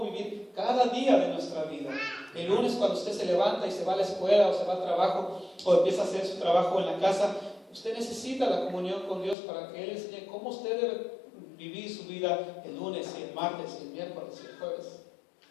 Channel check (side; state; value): right; drops out; at 9.3 s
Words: vivir cada día de nuestra vida. El lunes, cuando usted se levanta y se va a la escuela o se va al trabajo o empieza a hacer su trabajo en la casa, usted necesita la comunión con Dios para que Él enseñe cómo usted debe vivir su vida el lunes y el martes y el miércoles y el jueves.